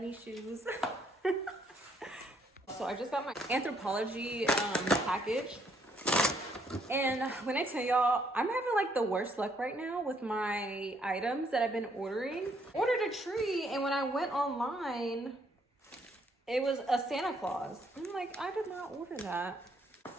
shoes. So I just got my Anthropologie package. And when I tell y'all, I'm having like the worst luck right now with my items that I've been ordering. Ordered a tree, and when I went online, it was a Santa Claus. I'm like, I did not order that.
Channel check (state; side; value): normal; both; correlation 0.69